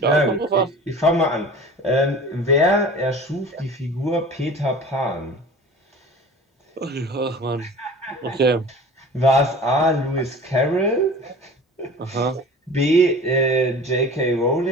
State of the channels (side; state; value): both; normal; correlation 0.40